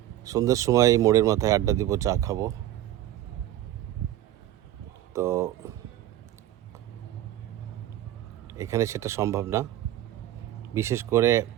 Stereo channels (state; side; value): quieter; left; 13.4 dB